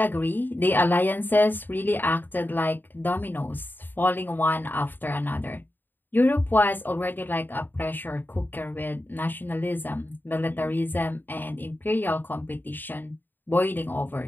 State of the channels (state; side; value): late; right; 0.092 ms